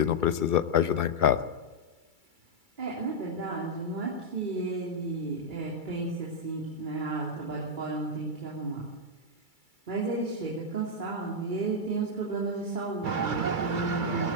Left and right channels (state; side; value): late; left; 2.3 ms